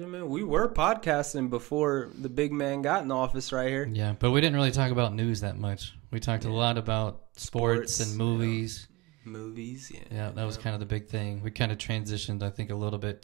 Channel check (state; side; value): quieter; left; 22.9 dB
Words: man? We were podcasting before the big man got in office right here. Yeah, but we didn't really talk about news that much. We talked a lot about sports and movies. Movies, yeah. Yeah, that was kind of the big thing. We kind of transitioned, I think, a little bit